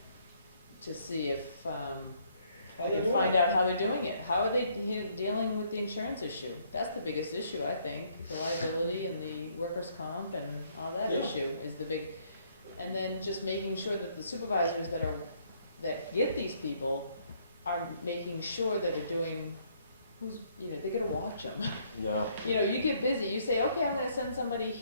to see if, I can find out how they're doing it. How are they dealing with the insurance issue? That's the biggest issue, I think. The liability and the workers' comp and all that Yeah. issue is the big, and then just making sure that the supervisors that get these people are making sure that they're doing, they gotta watch them. No. You know, you get busy, you say, okay, I'm gonna send somebody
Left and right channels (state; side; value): inverted; both; correlation -0.67